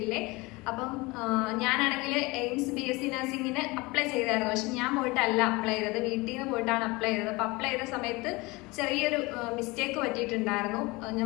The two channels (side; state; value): right; quieter; 23.7 dB